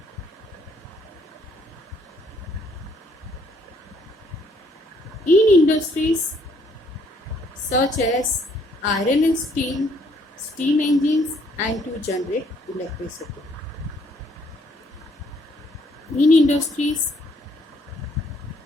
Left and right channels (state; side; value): normal; both; correlation 0.66